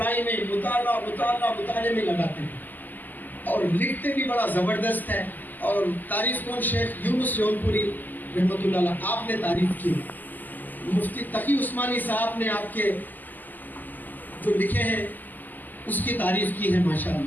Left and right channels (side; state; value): right; late; 0.085 ms